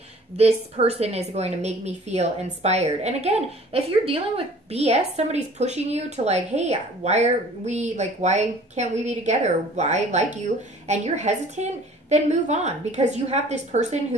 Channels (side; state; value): both; normal; correlation 0.50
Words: This person is going to make me feel inspired. And again, if you're dealing with BS, somebody's pushing you to like, hey, why can't we be together? I like you, and you're hesitant, then move on, because you have this person